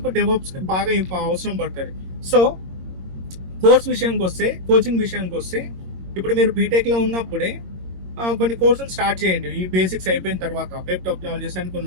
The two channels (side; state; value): left; late; 22 ms